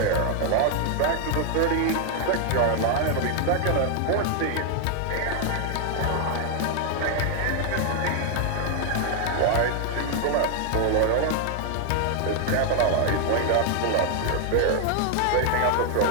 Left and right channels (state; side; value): different; both; correlation 0.00